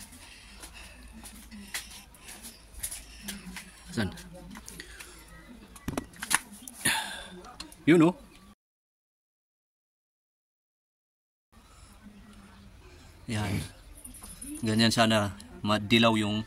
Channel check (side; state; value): both; identical; correlation 1.00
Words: Saan? Yun oh. Yan. Ganyan sana madilaw yung